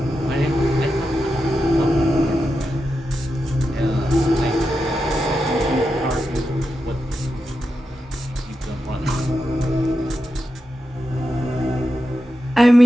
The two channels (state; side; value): normal; both; correlation 0.89